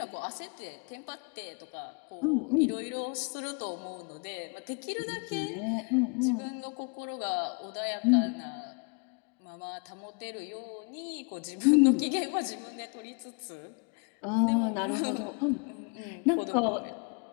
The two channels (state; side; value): quieter; right; 35.6 dB